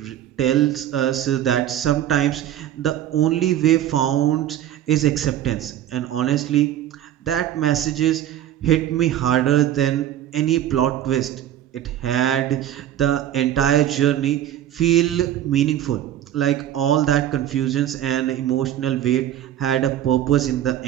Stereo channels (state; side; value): quieter; left; 11.5 dB